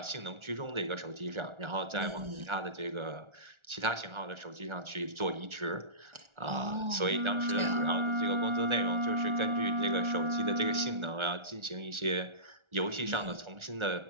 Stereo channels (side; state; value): left; late; 1.4 ms